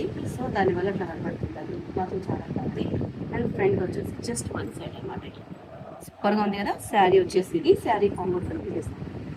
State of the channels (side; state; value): both; identical; correlation 1.00